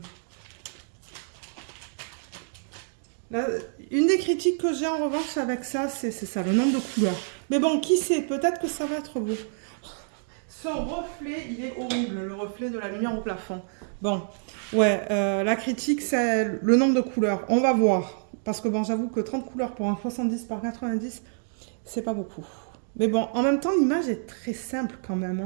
Une des critiques que j'ai en revanche avec ça, c'est ça, le nombre de couleurs. Mais bon, qui sait, peut-être que ça va être beau. Son reflet, il est horrible, le reflet de la lumière au plafond. Bon, ouais, la critique, c'est le nombre de couleurs. On va voir. Parce que bon, j'avoue que 30 couleurs pour un 70 par 90, c'est pas beaucoup. Mais bon, en même temps, l'image est très simple quand même.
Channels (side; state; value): left; silent; digital silence